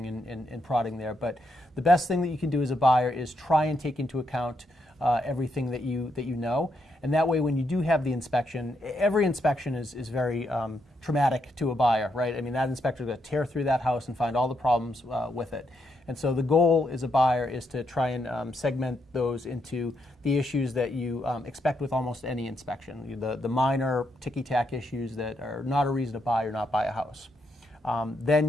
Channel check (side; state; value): both; normal; correlation 0.79